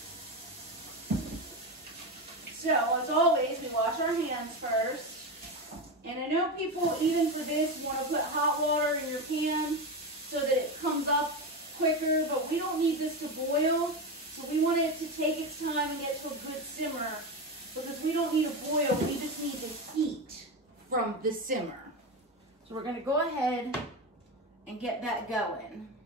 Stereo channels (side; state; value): both; normal; correlation 0.17